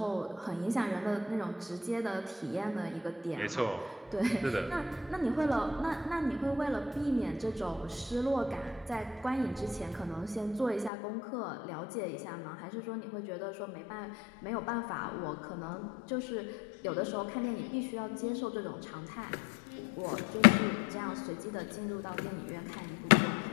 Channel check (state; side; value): drops out; right; at 10.9 s